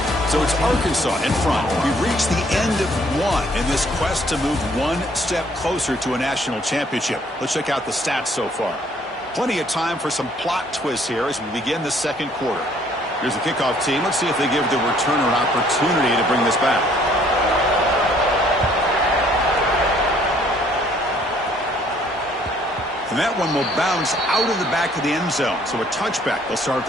So it's Arkansas in front. We've reached the end of one in this quest to move one step closer to a national championship. Let's check out the stats so far. Plenty of time for some plot twists here as we begin the second quarter. Here's the kickoff team. Let's see if they give the returner an opportunity to bring this back. And that one will bounce out of the back of the end zone. So a touchback. They'll start at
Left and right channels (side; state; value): both; normal; correlation 0.62